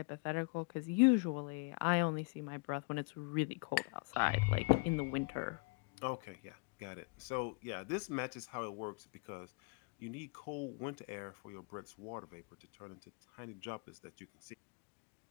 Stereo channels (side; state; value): right; quieter; 30.8 dB